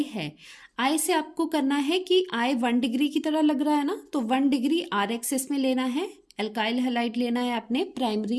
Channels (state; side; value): identical; both; correlation 1.00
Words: है, आई से आपको करना है कि आई 1 डिग्री की तरह लग रहा है ना, तो 1 डिग्री आर एक्सिस में लेना है। एल्काइल हैलाइड लेना है आपने,